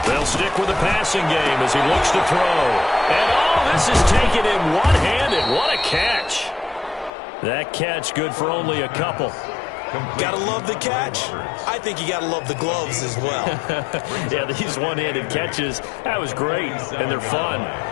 They'll stick with the passing game as he looks to throw. And this is taken in one-handed. What a catch. That catch good for only a couple. Gotta love the catch. I think you gotta love the gloves as well. Yeah, these one-handed catches, that was great, and they're fun.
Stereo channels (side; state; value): right; drops out; at 7.1 s